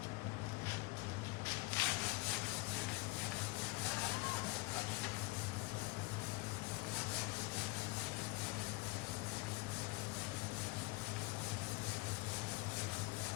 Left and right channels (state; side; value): quieter; right; 24.0 dB